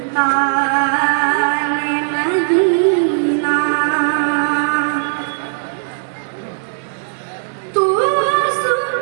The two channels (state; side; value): silent; left; digital silence